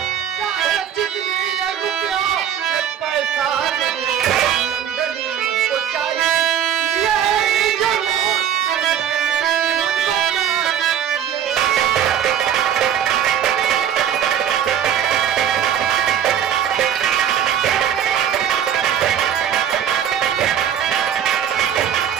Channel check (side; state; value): left; quieter; 9.3 dB